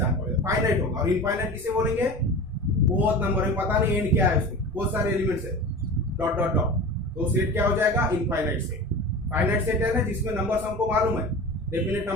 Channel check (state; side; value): normal; both; correlation 0.33